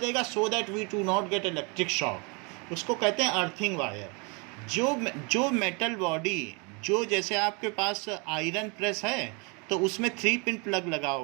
so that we do not get electric shock. उसको कहते हैं अर्थिंग वायर। जो मेटल बॉडी, जो जैसे आपके पास आयरन प्रेस है तो उसमें 3 पिन प्लग लगा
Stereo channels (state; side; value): quieter; left; 31.9 dB